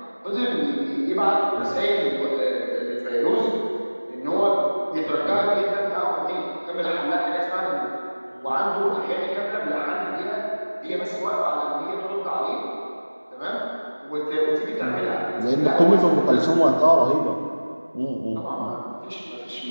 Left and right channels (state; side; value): inverted; both; correlation -1.00